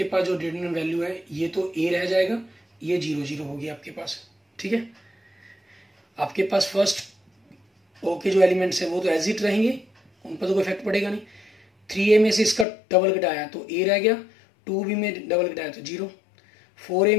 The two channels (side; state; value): right; drops out; at 12.7 s